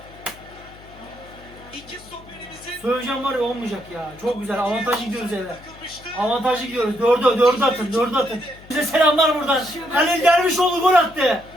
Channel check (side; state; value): left; noise; hum, 22 dB below the sound